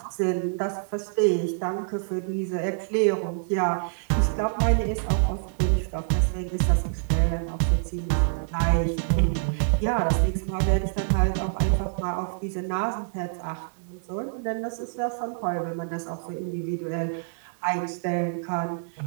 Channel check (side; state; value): left; silent; digital silence